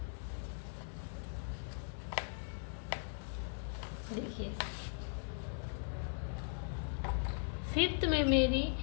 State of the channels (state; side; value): silent; right; digital silence